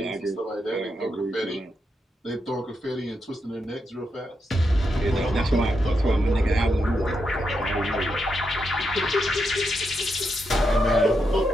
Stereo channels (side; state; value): both; normal; correlation 0.83